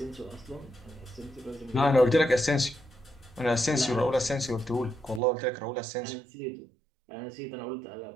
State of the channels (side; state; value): left; drops out; at 5.2 s